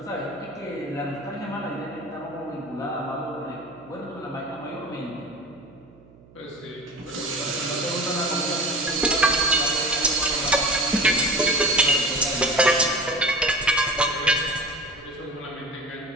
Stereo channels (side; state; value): right; noise; hum, 25 dB below the sound